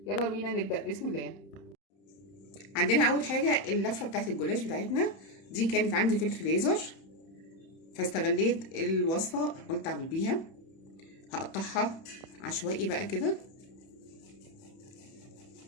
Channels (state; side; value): late; right; 30 ms